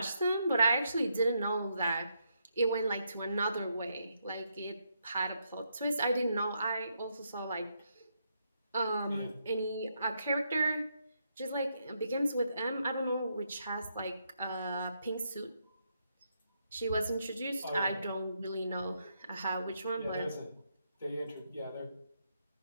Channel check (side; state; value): both; inverted; correlation -0.78